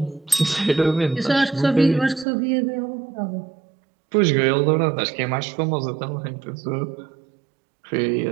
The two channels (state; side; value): drops out; left; at 2.2 s